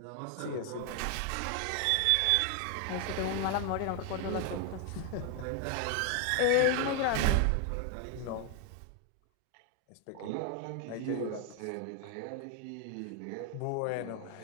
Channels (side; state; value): both; different; correlation 0.00